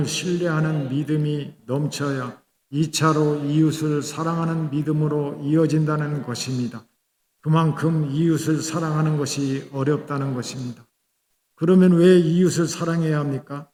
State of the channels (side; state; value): both; identical; correlation 1.00